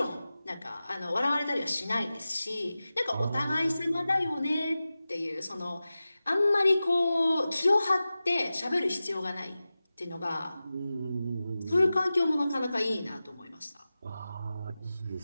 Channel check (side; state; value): both; inverted; correlation -0.95